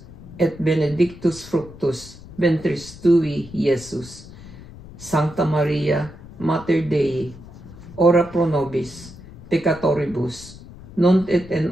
et benedictus fructus ventris tui, Iesus. Sancta Maria, Mater Dei, ora pro nobis peccatoribus, nunc et in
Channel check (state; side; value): noise; left; rumble, 17 dB below the sound